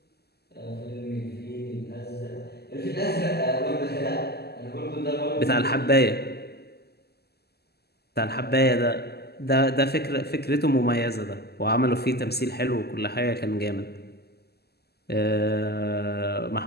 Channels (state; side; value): late; right; 0.46 ms